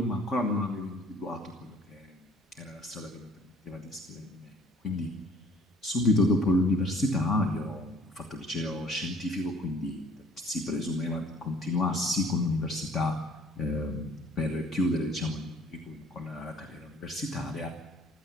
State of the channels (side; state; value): both; normal; correlation 0.56